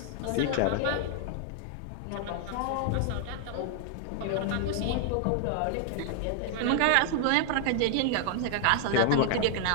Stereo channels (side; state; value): both; different; correlation -0.01